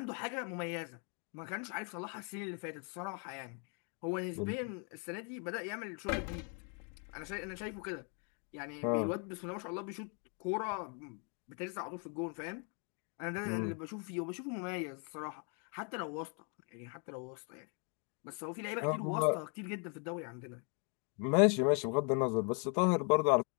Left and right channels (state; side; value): quieter; right; 39.4 dB